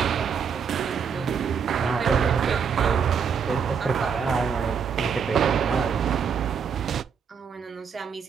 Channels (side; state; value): left; quieter; 6.7 dB